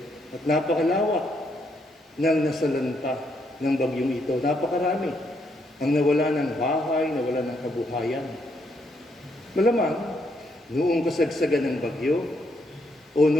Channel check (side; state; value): both; normal; correlation 0.75